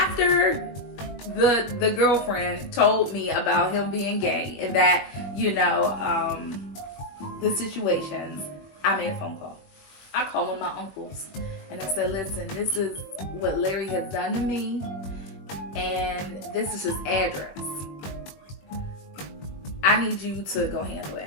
the girlfriend told me about him being gay and that, you know, the situations, I made a phone call. I called one of my uncles and I said, listen, this is what Larry has done to me and this is his address. I need you to go handle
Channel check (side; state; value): right; late; 21 ms